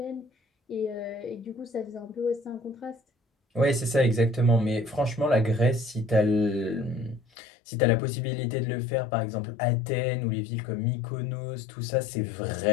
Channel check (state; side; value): drops out; right; at 7.2 s